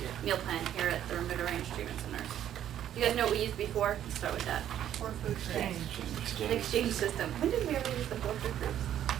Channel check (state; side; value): quieter; left; 10.9 dB